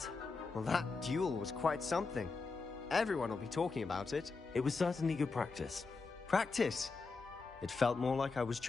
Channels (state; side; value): quieter; right; 4.2 dB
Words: Well, that duel was quite something. Everyone will be talking about it. It was certainly good practice. Practice? It felt more like I was